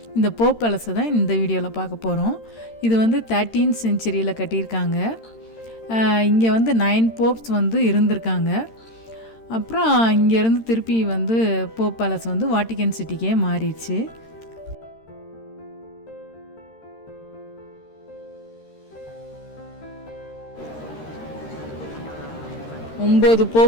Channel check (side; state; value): right; late; 13 ms